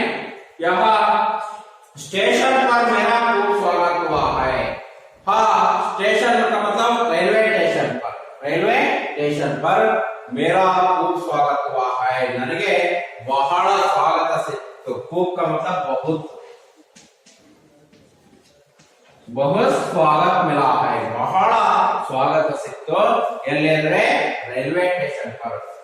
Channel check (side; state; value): both; identical; correlation 1.00